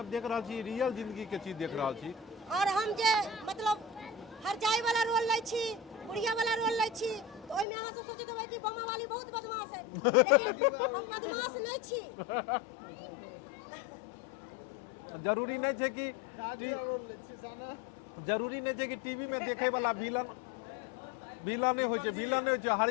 देख रहल छी रियल जिंदगी के चीज देख रहल छी। और हम जे मतलब हर जाय वाला रोल लै छी, बुढ़िया वाला रोल लै छी, तो ओइमे अहाँ सब सोचैत होबै कि बम्मा वाली बहुत बदमाश है, लेकिन हम बदमाश नहीं छी। जरूरी नहीं है कि जरूरी नहीं है कि टीवी में देखे वाला विलन नहीं हो छै, विलन नहीं हो छै।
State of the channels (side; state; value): right; drops out; at 7.7 s